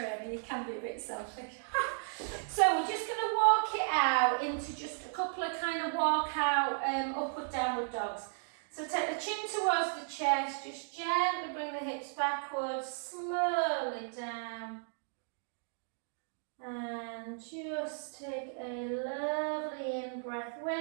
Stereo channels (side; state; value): left; silent; digital silence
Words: You can be a bit selfish. So, we're just going to walk it out into just a couple of kind of walkout upward, downward dogs. So, take the chin towards the chest. Just gently bring the hips backwards, slowly down. And just take a lovely in breath.